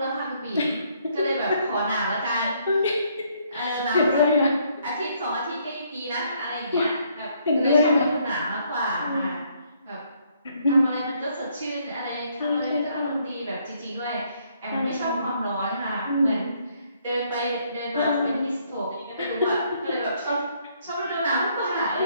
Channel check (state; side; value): inverted; both; correlation -0.69